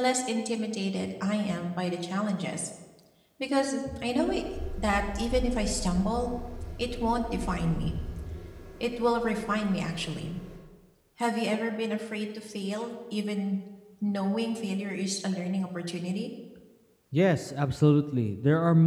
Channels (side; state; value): both; identical; correlation 1.00